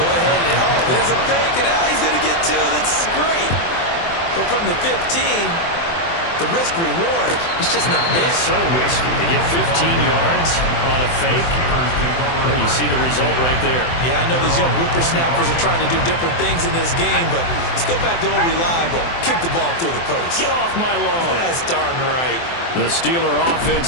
ahead and, oh, there's a fake, and he's going to get two. That's great. But from the 15, the risk-reward, it's just not there. It's so risky to get 15 yards on a fake. Well, you see the result right there. Yeah, I know these young whippersnappers are trying to do different things in this game, but let's go back to old reliable. Kick the ball through the post. Get off my lawn. That's darn right. The Steeler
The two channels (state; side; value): late; right; 24 ms